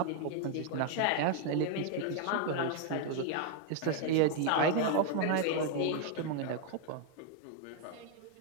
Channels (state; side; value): different; both; correlation 0.00